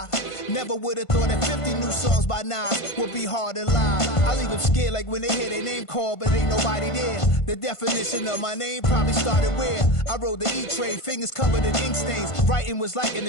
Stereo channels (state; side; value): late; right; 1.5 ms